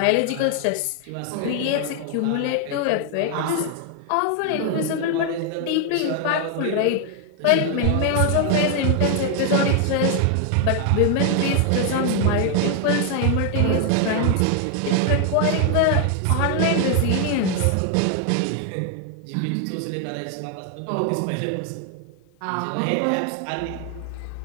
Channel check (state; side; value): different; both; correlation 0.00